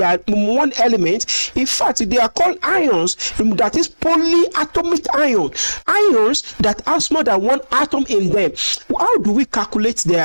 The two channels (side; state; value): both; inverted; correlation -1.00